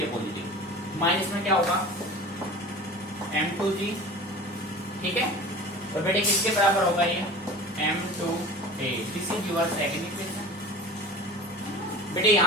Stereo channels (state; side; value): normal; both; correlation 0.38